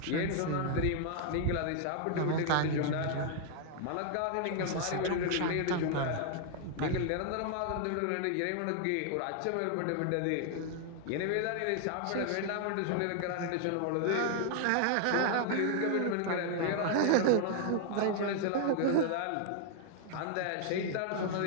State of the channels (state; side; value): different; both; correlation 0.00